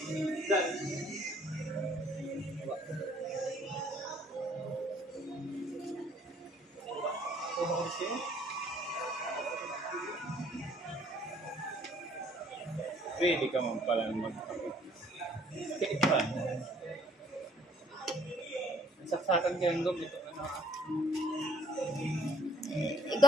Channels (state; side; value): normal; both; correlation 0.60